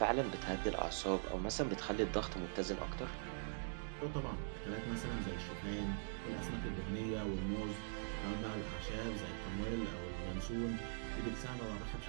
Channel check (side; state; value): left; silent; digital silence